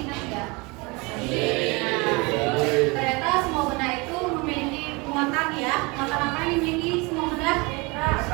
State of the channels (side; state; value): left; quieter; 26.8 dB